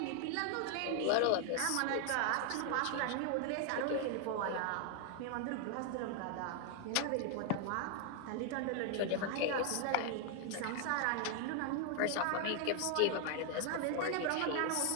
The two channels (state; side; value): different; both; correlation 0.00